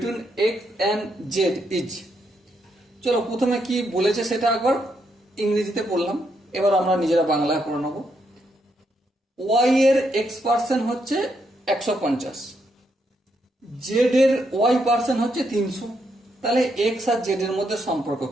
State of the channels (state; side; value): normal; both; correlation 0.78